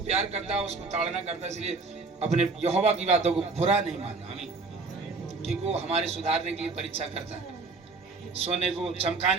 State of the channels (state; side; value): quieter; left; 4.0 dB